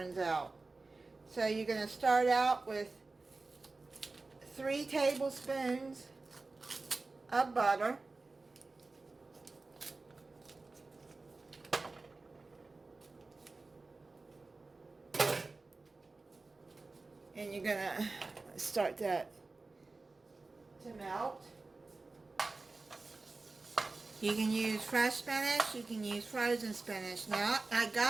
out. So you're gonna start out with 3 tablespoons of butter. And you're gonna start that to melt. You can use fresh spinach, you can use frozen spinach. Now, I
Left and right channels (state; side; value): quieter; left; 3.6 dB